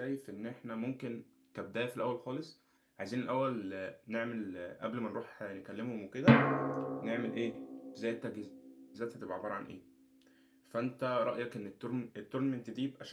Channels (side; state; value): both; identical; correlation 1.00